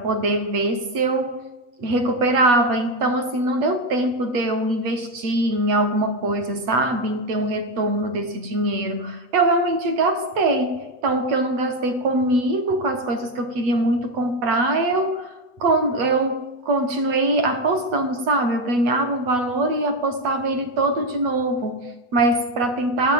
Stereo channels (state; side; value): late; left; 8.2 ms